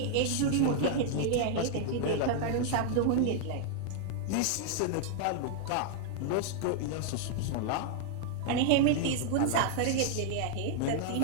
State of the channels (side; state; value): both; different; correlation -0.01